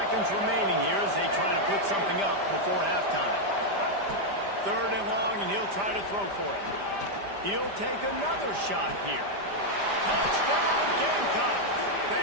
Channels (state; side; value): late; left; 5.0 ms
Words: remaining here as they try to put something up before halftime. 3rd and long, and he'll try to throw for it. He'll take another shot here. Touchdown, Gamecocks!